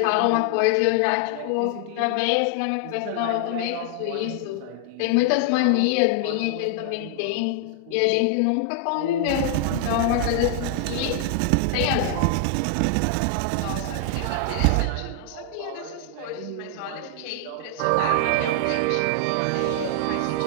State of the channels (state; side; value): different; both; correlation 0.00